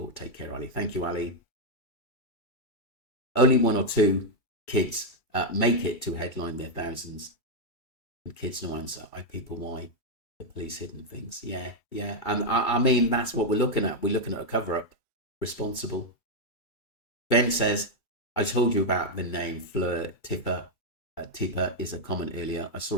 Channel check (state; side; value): late; right; 2.3 ms